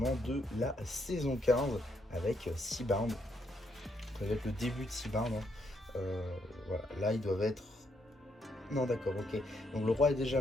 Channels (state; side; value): normal; both; correlation 0.75